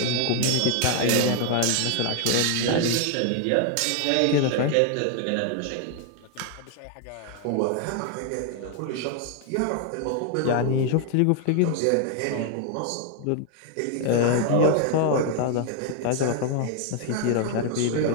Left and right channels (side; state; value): both; different; correlation 0.00